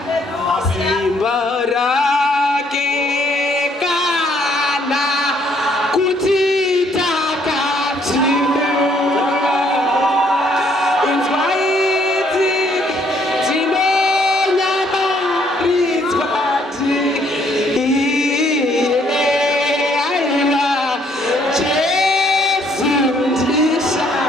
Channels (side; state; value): both; normal; correlation 0.67